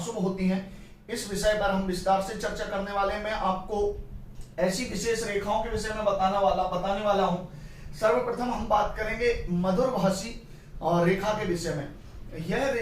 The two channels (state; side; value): identical; both; correlation 1.00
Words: होती हैं, इस विषय पर हम विस्तार से चर्चा करने वाले हैं। मैं आपको ऐसी विशेष रेखाओं के विषय में बताने वाला हूं। सर्वप्रथम हम बात करेंगे मधुरभाषी रेखा के विषय में। यह